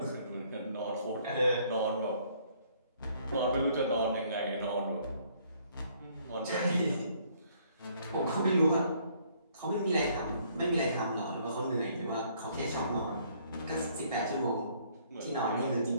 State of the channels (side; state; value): both; inverted; correlation -0.64